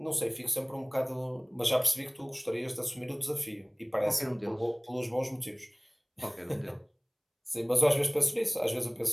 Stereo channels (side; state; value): both; identical; correlation 1.00